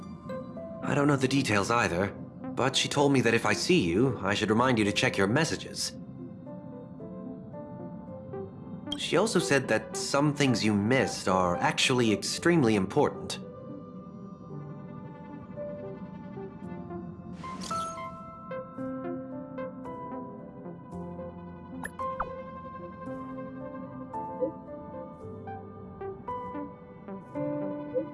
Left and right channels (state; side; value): identical; both; correlation 1.00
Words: I don't know the details either, but she told me that if I see you, I should remind you to check your messages. She also said that some things you missed are actually extremely important.